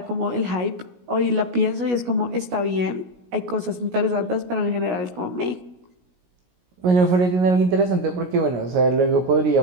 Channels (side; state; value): left; late; 17 ms